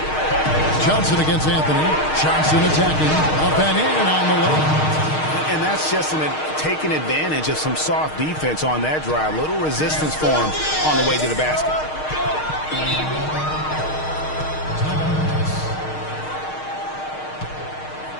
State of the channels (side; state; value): right; late; 6.5 ms